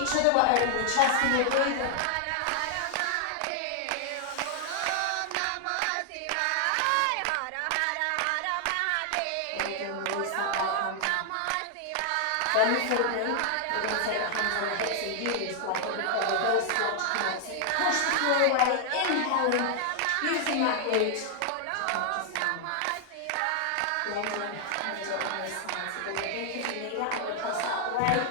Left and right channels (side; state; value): both; different; correlation 0.00